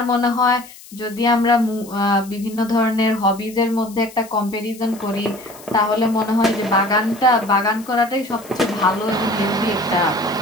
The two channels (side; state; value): left; noise; hiss, 20 dB below the sound